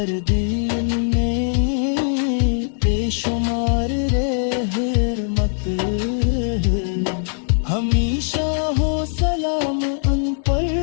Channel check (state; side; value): silent; right; 65 dB below the other